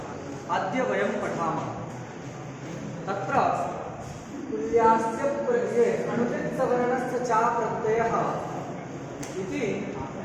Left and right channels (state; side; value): identical; both; correlation 1.00